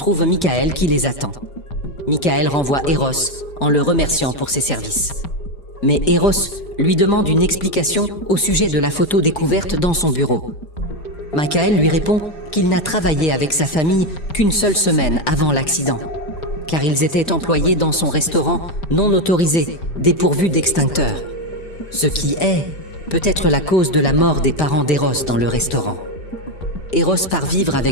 Michael qui les attend. Michael renvoie Eros en le remerciant pour ses services. Mais Eros lui demande une explication au sujet de la photo découverte dans son bureau. Michael lui répond qu'il n'a travaillé avec sa famille qu'une seule semaine avant l'accident, car ils étaient employés dans son restaurant non autorisé, dépourvu d'extincteur. Ce qui est peut-être la cause de la mort des parents d'Eros dans le restaurant. Eros part vivre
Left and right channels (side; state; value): right; late; 5.0 ms